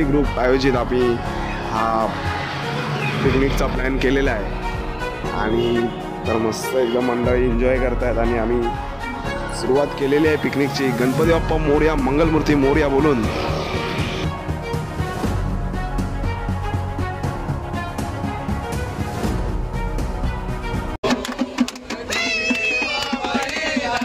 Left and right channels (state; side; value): identical; both; correlation 1.00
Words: ग्रुप आयोजित आम्ही हा पिकनिकचा प्लॅन केलेला आहे आणि तर मस्त एकदम मंडळी एन्जॉय करतायत आणि आम्ही सुरुवात केलेली आहे पिकनिकची गणपती बाप्पा मोरया मंगलमूर्ती मोरया बोलून।